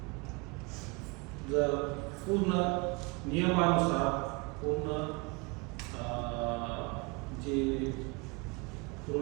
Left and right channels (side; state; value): left; quieter; 28.5 dB